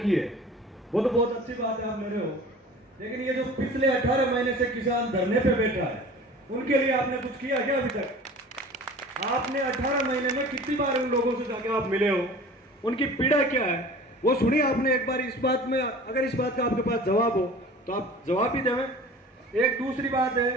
है वो तो बहुत अच्छी बात है, आप ले रहे हो, लेकिन ये जो पिछले 18 महीने से किसान धरने पे बैठा है उनके लिए आपने कुछ किया क्या अभी तक? आपने 18 महीने में कितनी बार उन लोगों से जाके आप मिले हो, उनकी पीड़ा क्या है वो सुनिए आपने एक बार। इस बात में अगर इस बात का आपके पास जवाब हो तो आप जवाब ही दें। एक दूसरी बात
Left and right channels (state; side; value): normal; both; correlation 0.42